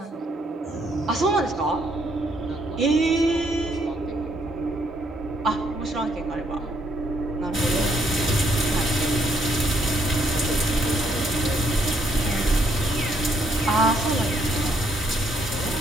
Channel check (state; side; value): normal; both; correlation 0.71